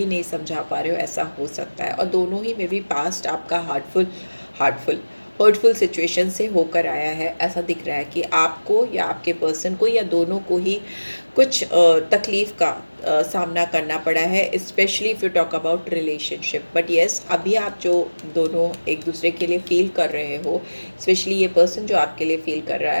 नहीं समझा पा रहे हो, ऐसा हो सकता है। और दोनों ही मे बी पास्ट आपका हार्टफुल हर्टफुल सिचुएशन से होकर आया है, ऐसा दिख रहा है कि आपको या आपके पर्सन को या दोनों को ही कुछ तकलीफ़ का सामना करना पड़ा है, specially if you talk about relationship. But yes, अभी आप जो दोनों एक दूसरे के लिए फ़ील कर रहे हो, स्पेशली ये पर्सन जो आपके लिए फ़ील कर रहा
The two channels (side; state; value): both; inverted; correlation -1.00